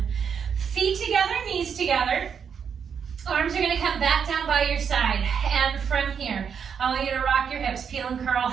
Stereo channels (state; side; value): quieter; left; 7.1 dB